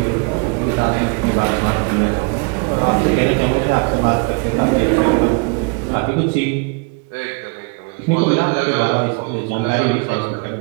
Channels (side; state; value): left; quieter; 31.3 dB